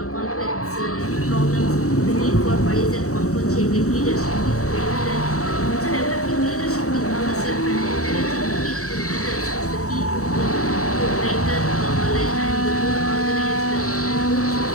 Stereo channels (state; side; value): late; right; 0.65 ms